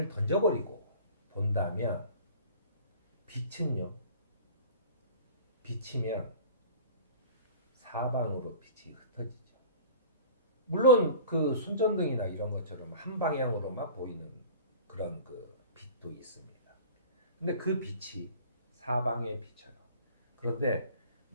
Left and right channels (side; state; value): both; inverted; correlation -0.42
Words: 던져버리고 본다면 빛이면 사방으로 빛이 흩어지죠. 물론 그 손전등이나 이런 것처럼 한 방향으로만 보이는 그런 그 빛도 있습니다. 근데 그 빛이 사방에 비쳐요. 그런데